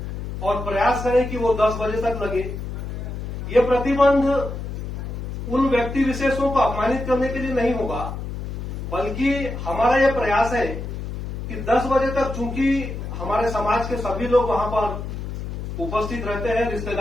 और प्रयास करें कि वो 10 बजे तक लगे। ये प्रतिबंध उन व्यक्ति विशेषों को अपमानित करने के लिए नहीं होगा, बल्कि हमारा यह प्रयास है कि 10 बजे तक, चूंकि हमारे समाज के सभी लोग वहां पर उपस्थित रहते हैं,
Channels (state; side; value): noise; left; hum, 6 dB below the sound